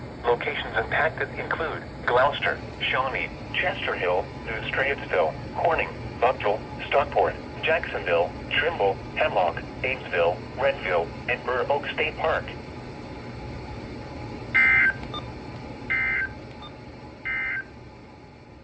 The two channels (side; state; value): both; identical; correlation 1.00